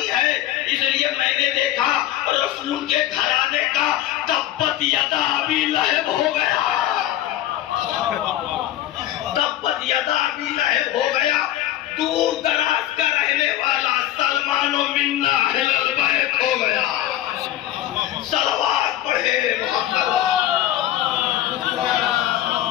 ہے۔ اس لیے میں نے دیکھا رسول کے گھرانے کا تبت یدا ابی لہب ہو گیا، تبت یدا ابی لہب ہو گیا۔ دور دراز کا رہنے والا سلمان و منا اہل البیت ہو گیا۔ صلوات پڑھے محمد۔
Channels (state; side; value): quieter; right; 13.2 dB